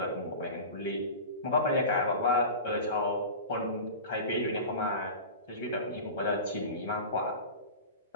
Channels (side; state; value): both; inverted; correlation -0.31